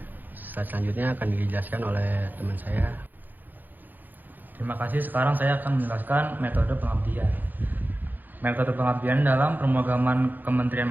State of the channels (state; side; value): late; left; 0.087 ms